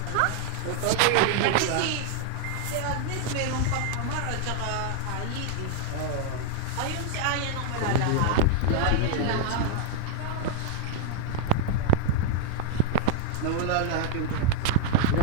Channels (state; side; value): different; both; correlation -0.01